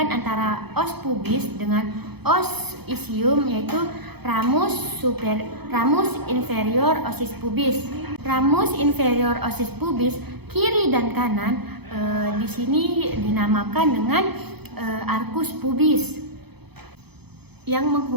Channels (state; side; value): late; left; 0.98 ms